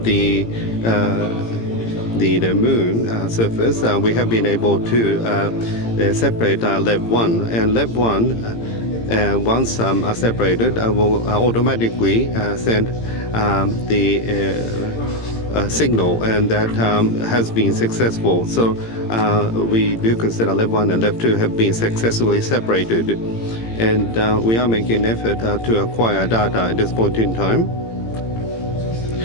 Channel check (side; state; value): right; late; 18 ms